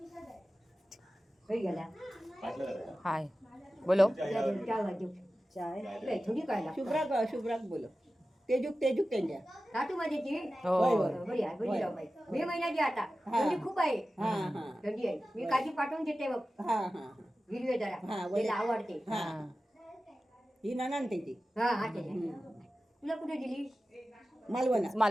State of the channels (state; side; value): normal; both; correlation 0.95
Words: हाय बोलो. थोडी काय शुभ्राक बोलो. तेजूक त्यांच्या. साठू माझ्याची हो बरी आहे बरी राव बाई. मे महिन्याची आता थंडी खूप आहे. थंडी आहे. मी काजी पाठवून देते बघ. हिरवे जरा तिला आवडते. ही नानान त्याची हा हा त्याच्या. तुला कुठे दिली